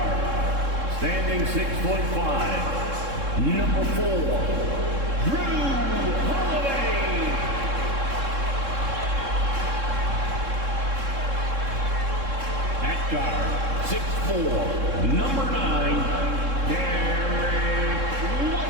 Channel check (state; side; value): late; left; 3.7 ms